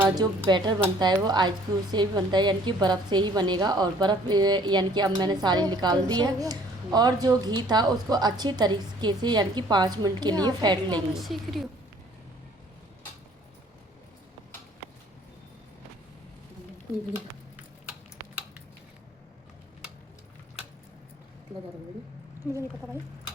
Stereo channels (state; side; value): normal; both; correlation 0.56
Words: जो बैटर बनता है वो आइस क्यूब से ही बनता है, यानी कि बर्फ़ से ही बनेगा। और बर्फ़ यानी कि अब मैंने सारी निकाल दी है, और जो घी था उसको अच्छी तरीके से यानी कि 5 मिनट के लिए फेंट लेंगे। सीख रही हूँ। मुझे नहीं पता भाई।